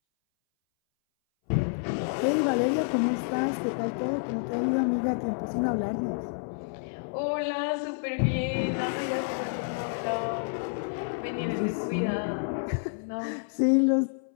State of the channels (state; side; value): silent; right; 59 dB below the other